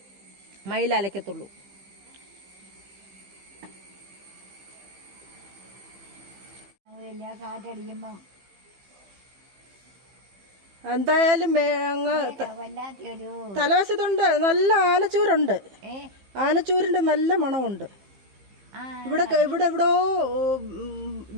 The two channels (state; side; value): late; left; 15 ms